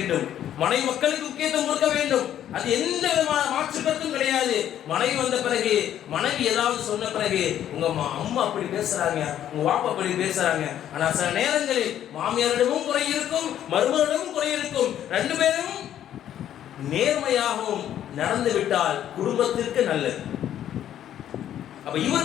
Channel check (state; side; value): quieter; right; 10.9 dB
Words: மனைவி மக்களுக்கு முக்கியத்துவம் கொடுக்க வேண்டும். அது எந்த விதமான மாற்று கருத்தும் கிடையாது. மனைவி வந்த பிறகு, மனைவி ஏதாவது சொன்ன பிறகு, உங்க அம்மா அப்படி பேசுறாங்க, உங்க வாப்பா அப்படி பேசுறாங்க. ஆனா சில நேரங்களில் மாமியாரிடமும் குறை இருக்கும், மருமகளிடமும் குறை இருக்கும். ரெண்டு பேரும் நேர்மையாகவும் நடந்து விட்டால் குடும்பத்திற்கு நல்லது. அப்ப